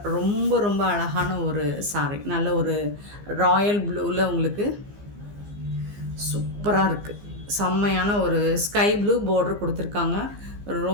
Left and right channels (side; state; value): left; late; 15 ms